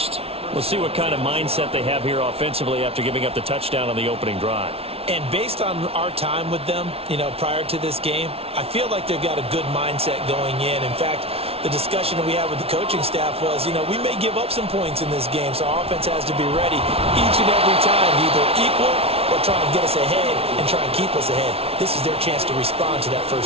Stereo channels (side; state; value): left; late; 0.29 ms